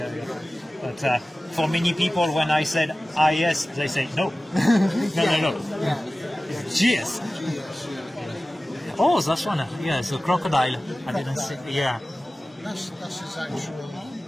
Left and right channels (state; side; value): normal; both; correlation 0.96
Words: But for many people, when I said IS, they say no, no. Yeah. It's GS. Oh, that's one. Yeah, it's a crocodile. I didn't see. Yeah. That's his actual,